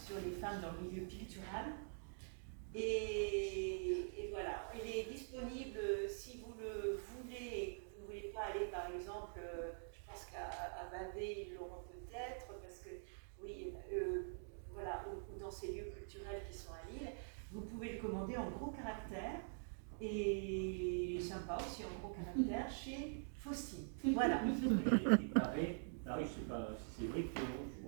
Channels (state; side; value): silent; left; digital silence